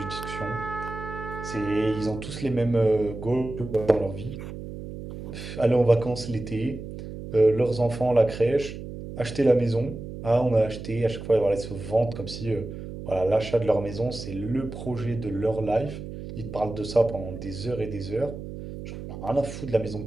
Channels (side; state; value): right; noise; hum, 10 dB below the sound